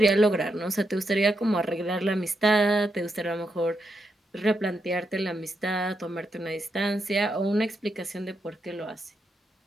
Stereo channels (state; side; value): normal; both; correlation 0.82